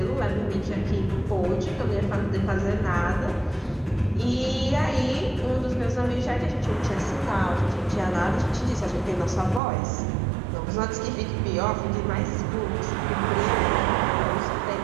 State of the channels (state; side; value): drops out; left; at 9.6 s